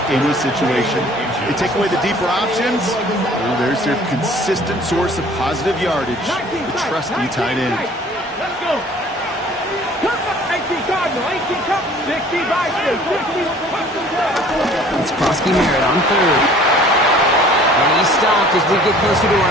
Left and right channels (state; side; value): normal; both; correlation 0.52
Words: any situation. They take away the deeper options. Well, there's their consistent source of positive yardage, the trusty tight end. Let's go. It's Krosky-Merritt on 3rd. And he's stopped as we get closer to